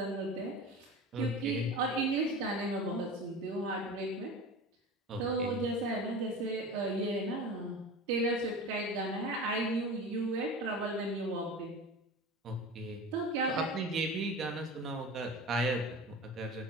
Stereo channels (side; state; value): both; normal; correlation 0.32